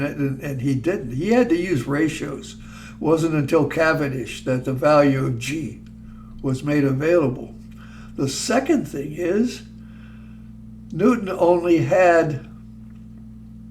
it, and he didn't. He had to use ratios. It wasn't until Cavendish that the value of G was made available. The second thing is Newton only had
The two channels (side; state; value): both; identical; correlation 1.00